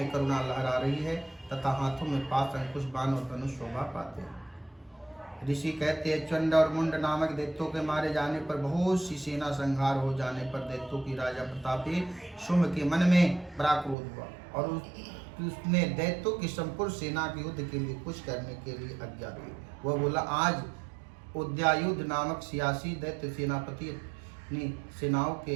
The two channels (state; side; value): drops out; left; at 14.0 s